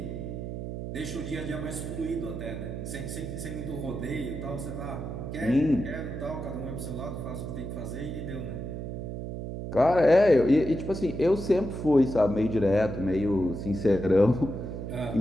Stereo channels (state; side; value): noise; right; hum, 6 dB below the sound